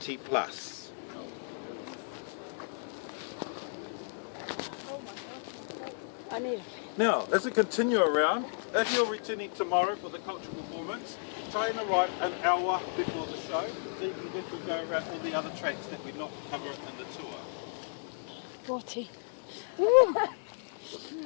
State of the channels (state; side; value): silent; right; digital silence